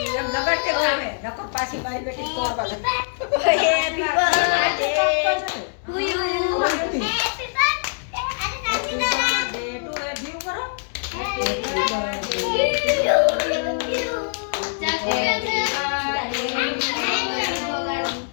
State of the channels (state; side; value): silent; right; digital silence